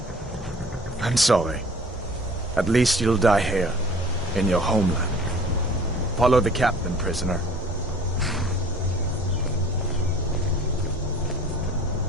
I'm sorry. At least you'll die here, in your homeland. Follow the captain, prisoner.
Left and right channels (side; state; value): both; normal; correlation 0.47